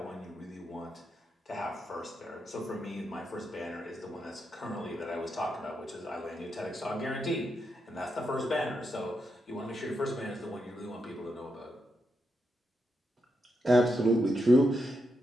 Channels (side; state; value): both; normal; correlation 0.84